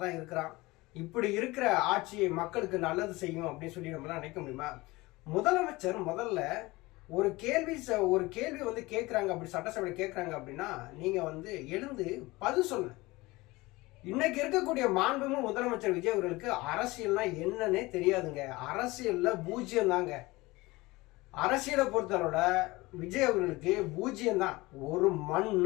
தான் இருக்கிறான். இப்படி இருக்கிற ஆட்சியை மக்களுக்கு நல்லது செய்யும் அப்படின்னு சொல்லி நம்மளாம் நினைக்க முடியுமா? முதலமைச்சர் முதல்ல ஒரு கேள்வி வந்து கேட்குறாங்க, அப்படி சட்டசபையில் கேட்குறாங்க அப்படின்னா நீங்க வந்து எழுந்து பதில் சொல்லுங்க. இன்னைக்கு இருக்கக்கூடிய மாண்புமிகு முதலமைச்சர் விஜய் அவர்களுக்கு அரசியல்னா என்னன்னே தெரியாதுங்க. அரசியல்ல பூஜ்யம் தாங்க. அரசியலை பொறுத்தவரோட விஜய் அவர்களுக்கு பூஜ்யம் தான், ஒரு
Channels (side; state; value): right; quieter; 21.4 dB